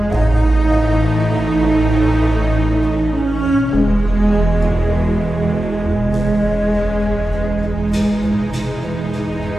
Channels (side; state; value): both; normal; correlation 0.93